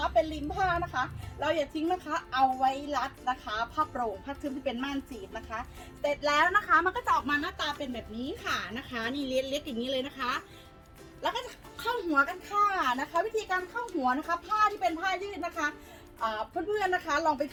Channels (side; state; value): both; identical; correlation 1.00